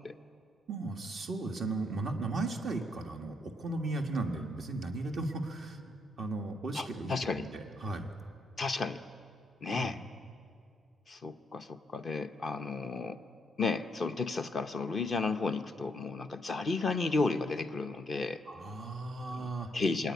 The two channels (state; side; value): normal; both; correlation 0.75